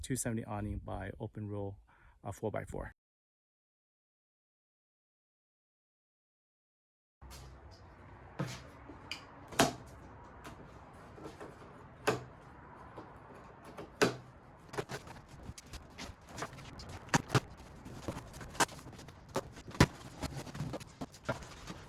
awning by Openroad 4x4.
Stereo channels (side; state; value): both; identical; correlation 1.00